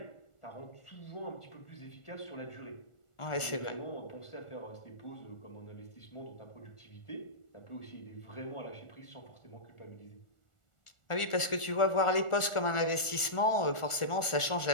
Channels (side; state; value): right; late; 1.4 ms